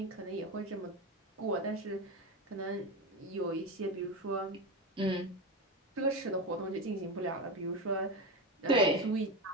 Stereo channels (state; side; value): normal; both; correlation 0.18